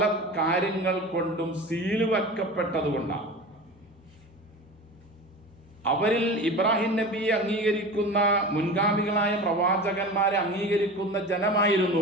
കാര്യങ്ങൾ കൊണ്ടും സീല് വെക്കപ്പെട്ടതുകൊണ്ടാണ്. അവരിൽ ഇബ്രാഹിം നബിയെ അംഗീകരിക്കുന്ന, മുൻഗാമികളായ പ്രവാചകന്മാരെ അംഗീകരിക്കുന്ന ജനമായിരുന്നു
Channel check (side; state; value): both; normal; correlation 0.33